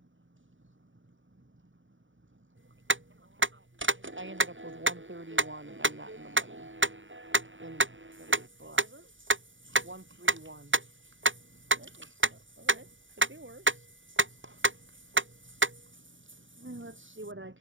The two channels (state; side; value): late; left; 0.56 ms